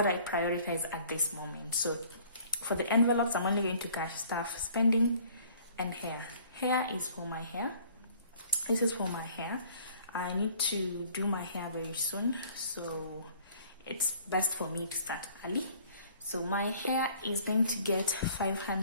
I prioritize at this moment. So for the envelopes, I'm only going to cash stuff spending and hair. Hair is for my hair. This is for my hair. I need to do my hair very soon, so it's best for me to start early. So my hair is going to get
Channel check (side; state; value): both; inverted; correlation -0.55